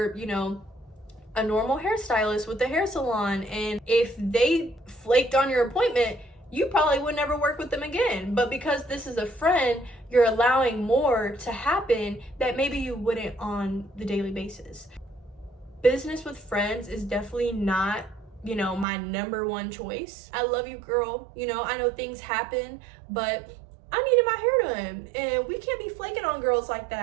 a normal hairstylist with a hair salon, and if they flaked on your appointment, you probably would never work with them again. But because this is a friend, you're allowing more to happen that maybe you wouldn't on the daily basis. Business with friends is definitely not, my number one choice. I love you, girl. I know things happen, but I needed my hair done, and we can't be flaking on girls like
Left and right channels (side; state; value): left; drops out; at 18.9 s